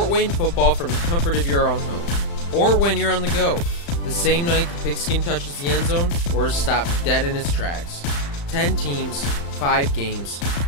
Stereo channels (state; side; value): late; right; 35 ms